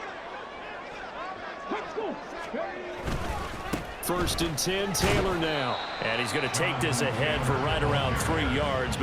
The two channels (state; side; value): identical; both; correlation 1.00